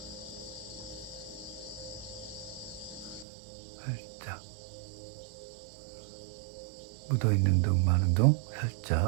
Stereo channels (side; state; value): left; drops out; at 3.2 s